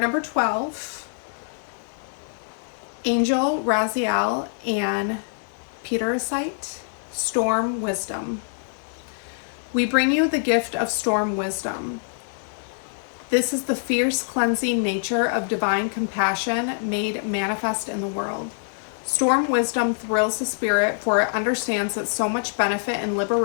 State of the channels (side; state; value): right; silent; digital silence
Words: 12, Angel Raziel and Peter Sight, Storm Wisdom. We bring you the gift of Storm Wisdom. This is the fierce cleansing nature of divine compassion made manifest in the world. Storm Wisdom thrills the spirit, for it understands that so much benefit and